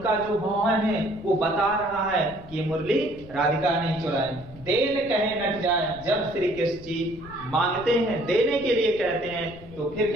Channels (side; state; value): left; noise; rumble, 18 dB below the sound